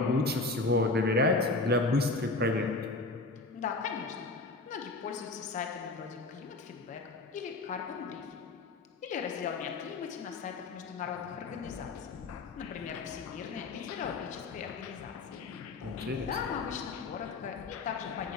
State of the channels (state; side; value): quieter; right; 3.4 dB